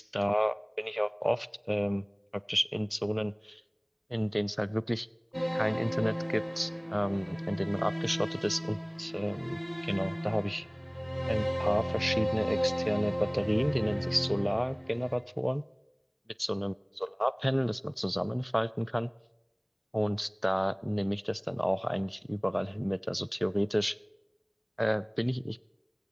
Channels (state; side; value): identical; both; correlation 1.00